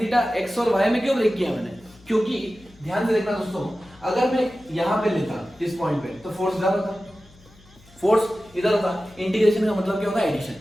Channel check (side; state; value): left; noise; hum, 26 dB below the sound